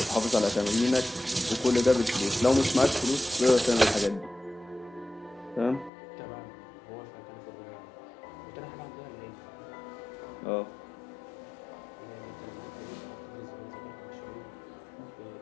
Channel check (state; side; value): drops out; right; at 5.9 s